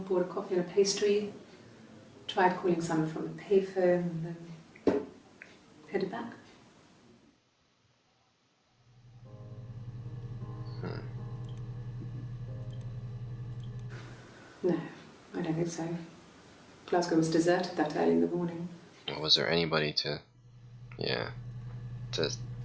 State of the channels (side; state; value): both; identical; correlation 1.00